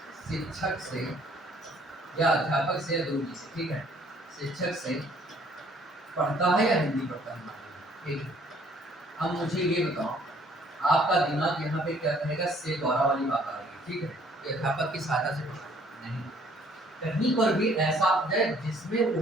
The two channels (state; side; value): normal; both; correlation 0.60